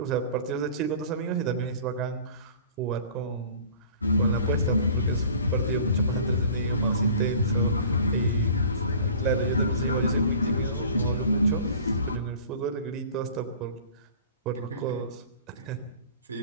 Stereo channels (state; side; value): inverted; both; correlation -0.45